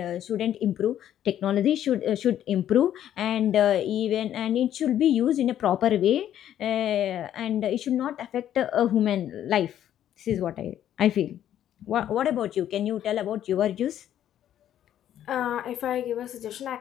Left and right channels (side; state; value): right; quieter; 11.0 dB